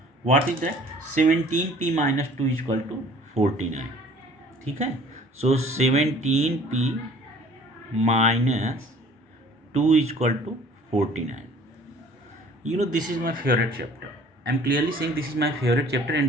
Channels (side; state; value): both; normal; correlation 0.51